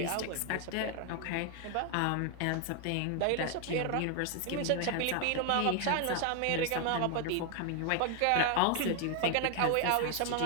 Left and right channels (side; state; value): both; different; correlation 0.00